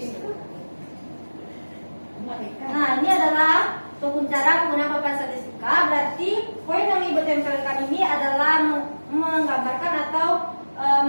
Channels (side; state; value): both; inverted; correlation -1.00